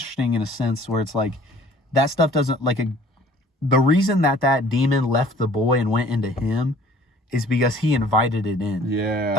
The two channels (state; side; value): normal; both; correlation 0.53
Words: in a sense where it's like that stuff doesn't the reason that demon left the boy and went into him is because he invited it in. Yeah,